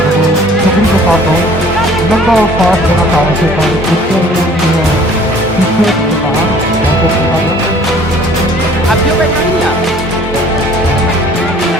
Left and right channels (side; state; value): both; normal; correlation 0.53